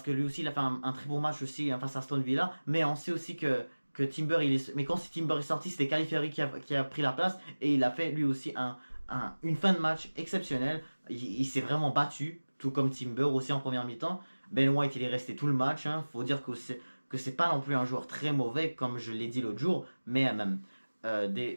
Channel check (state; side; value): inverted; both; correlation -1.00